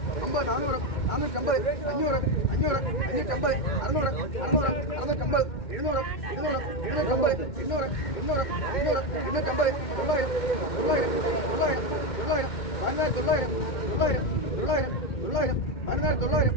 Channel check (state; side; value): late; right; 2.1 ms